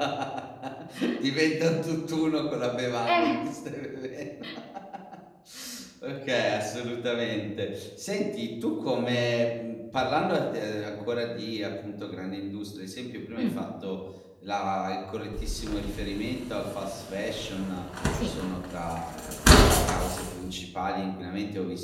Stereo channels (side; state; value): both; identical; correlation 1.00